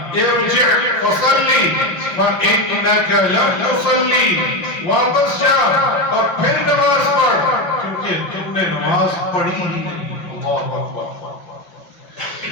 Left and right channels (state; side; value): late; right; 5.5 ms